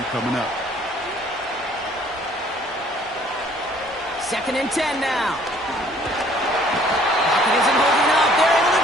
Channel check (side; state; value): both; normal; correlation 0.58